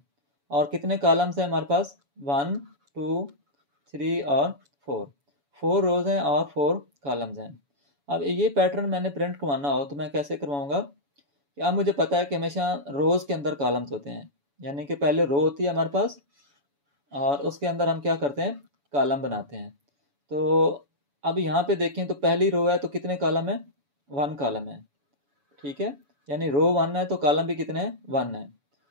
और कितने कॉलम्स हैं हमारे पास, 1 2 3 और 4 रोज हैं और 4 कॉलम्स हैं। अब ये पैटर्न मैंने प्रिंट करवाना हो तो मैं कैसे करवाऊँगा कि अब मुझे पता है कि हमेशा रोज़ के अंदर कॉलम्स होते हैं, यानी कि पहले रो होती है हमारे पास और उसके अंदर हम क्या करते हैं, कॉलम बनाते हैं। तो अब यहाँ पे देखें तो पहली रो है तो कितने कॉलम है, 1 कॉलम है, ठीक है। यानी रो 1 है तो कॉलम भी कितने हैं, 1 है।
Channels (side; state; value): left; late; 7.1 ms